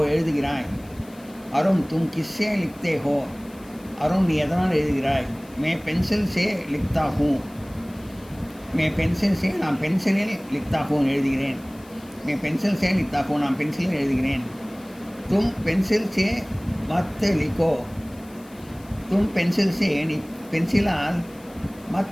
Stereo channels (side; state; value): left; noise; hiss, 25 dB below the sound